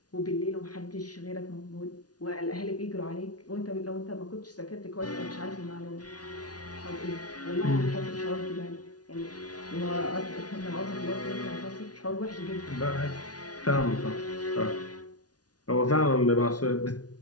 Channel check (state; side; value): late; right; 0.69 ms